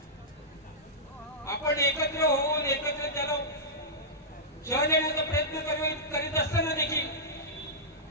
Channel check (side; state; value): both; normal; correlation -0.14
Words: आपण एकत्र होऊन एकत्र त्याला शह देण्याचा प्रयत्न करीत असताना देखील